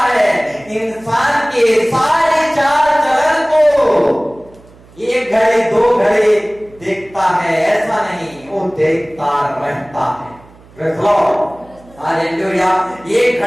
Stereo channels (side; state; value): right; noise; hum, 25 dB below the sound